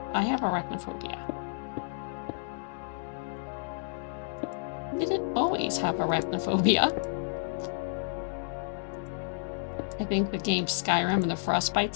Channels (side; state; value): right; silent; digital silence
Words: I have arachnophobia. Didn't always have arachnophobia. I think the game Skyrim and the